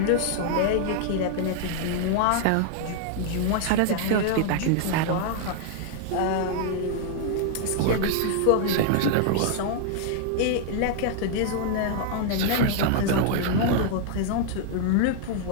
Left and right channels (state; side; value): different; both; correlation -0.01